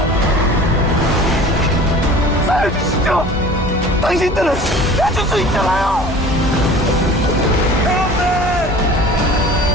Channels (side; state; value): both; normal; correlation 0.43